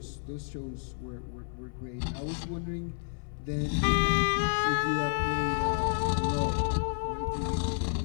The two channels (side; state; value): right; silent; 57 dB below the other